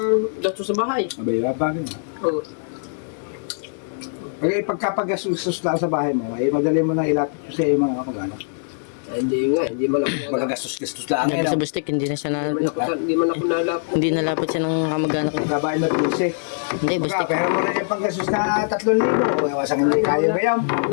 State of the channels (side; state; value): right; silent; digital silence